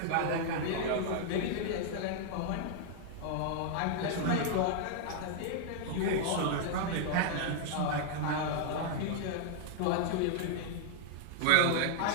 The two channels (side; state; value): both; different; correlation 0.00